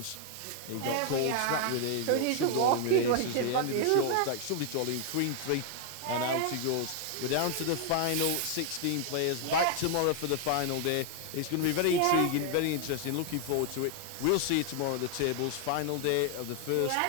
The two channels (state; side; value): different; both; correlation 0.00